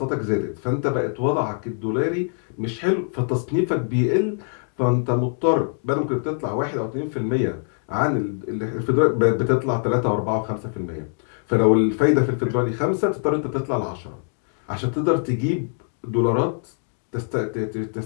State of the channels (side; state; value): right; silent; digital silence